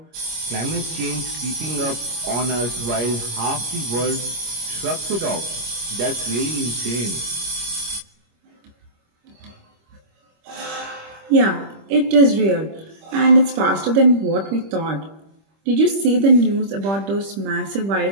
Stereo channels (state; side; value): late; left; 25 ms